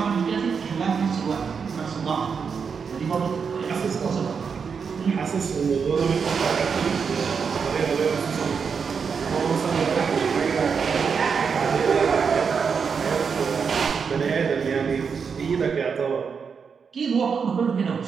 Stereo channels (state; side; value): quieter; left; 6.0 dB